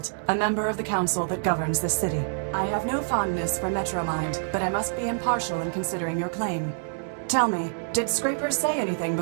a member of the council that governs this city. I have no fondness for Metromind, but I must be impartial in considering your claim. Tell me, did Scraper say anything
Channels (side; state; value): left; silent; digital silence